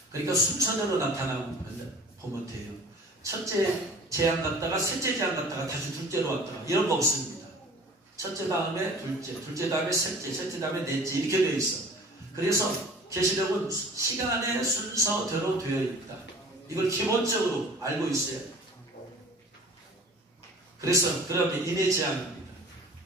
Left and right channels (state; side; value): normal; both; correlation 0.46